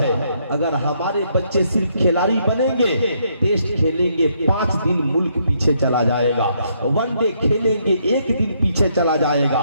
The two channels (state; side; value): inverted; both; correlation -0.73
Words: اگر ہمارے بچے صرف کھلاڑی بنیں گے، ٹیسٹ کھیلیں گے 5 دن ملک پیچھے چلا جائے گا، ون ڈے کھیلیں گے 1 دن پیچھے چلا جائے